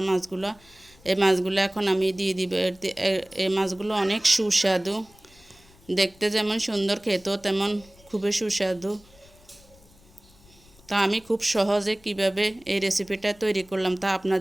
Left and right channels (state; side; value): noise; left; rumble, 27 dB below the sound